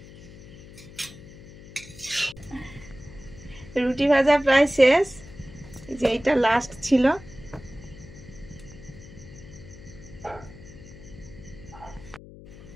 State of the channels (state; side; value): noise; left; hum, 18 dB below the sound